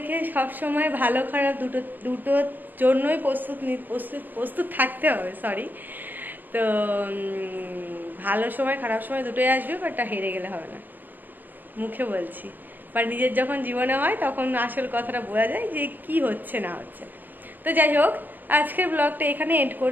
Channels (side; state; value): left; late; 0.087 ms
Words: সবসময় ভালো খারাপ দুটোর জন্যই প্রস্তুত থাকতে হবে। সরি, তো ভালো সময় খারাপ সময় দুটোই আসবে, বাট হেরে গেলে হবে না, মুখে বলছি। বা নিজের যখন জীবনে হয় তখন আসল কথাটা বোঝা যায় যে কি হচ্ছে না হচ্ছে। তো যাই হোক, আজকের ব্লগটা এখানে এন্ড